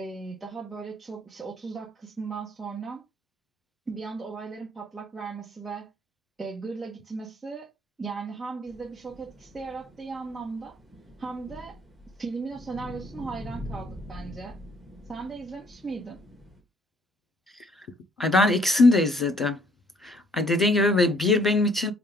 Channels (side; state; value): both; normal; correlation 0.63